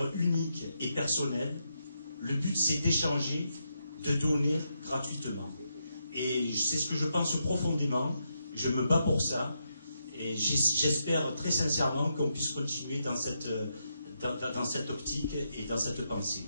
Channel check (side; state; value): both; inverted; correlation -0.82